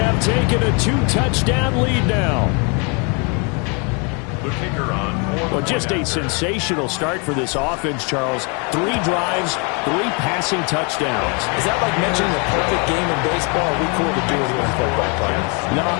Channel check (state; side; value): quieter; right; 34.0 dB